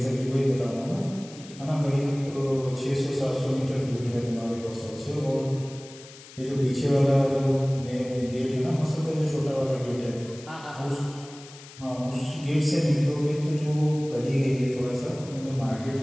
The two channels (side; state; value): left; noise; hiss, 19 dB below the sound